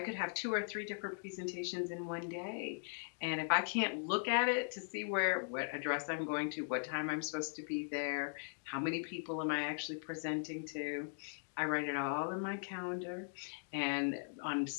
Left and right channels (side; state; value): right; silent; digital silence